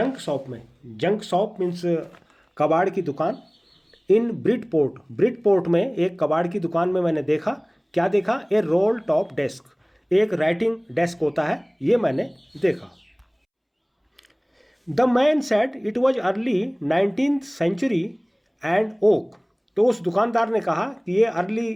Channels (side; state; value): both; identical; correlation 1.00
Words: शॉप में। जंक शॉप मीन्स कबाड़ की दुकान। इन ब्रिटपोर्ट, ब्रिटपोर्ट में एक कबाड़ की दुकान में मैंने देखा। क्या देखा? ए रोल टॉप डेस्क, एक राइटिंग डेस्क होता है, ये मैंने देखा। The man said it was early 19th century and oak. तो उस दुकानदार ने कहा कि ये अर्ली